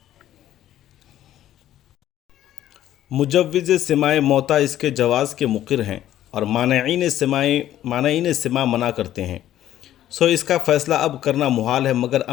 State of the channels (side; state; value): right; quieter; 12.5 dB